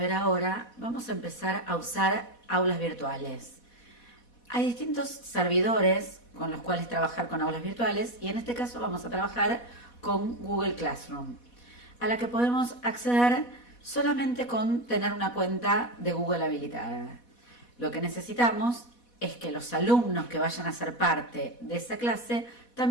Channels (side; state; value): right; late; 4.1 ms